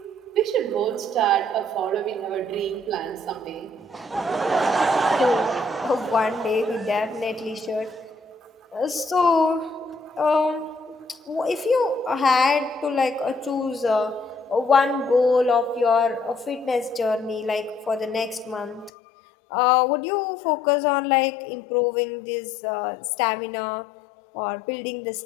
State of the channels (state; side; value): drops out; right; at 18.9 s